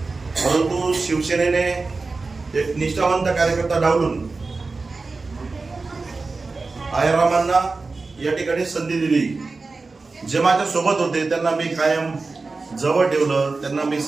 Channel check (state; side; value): quieter; left; 3.9 dB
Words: परंतु शिवसेनेने एक निष्ठावंत कार्यकर्ता डावलून आयरामांना या ठिकाणी संधी दिली. जे माझ्या सोबत होते त्यांना मी कायम जवळ ठेवलं, त्यांना मी